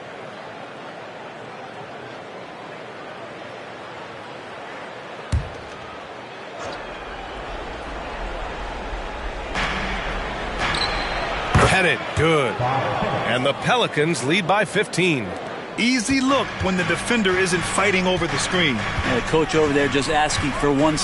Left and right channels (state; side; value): identical; both; correlation 1.00